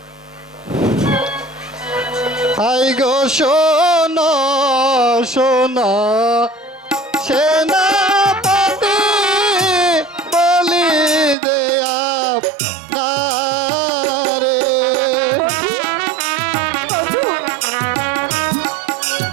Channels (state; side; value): drops out; left; at 11.4 s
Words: আই গো সোনা সোনা সেনাপতি বলি দেয়া